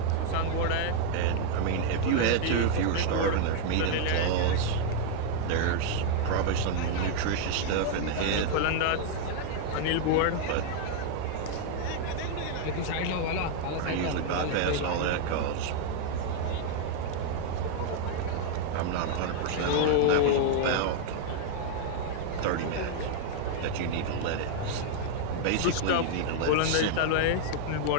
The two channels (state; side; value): different; both; correlation 0.00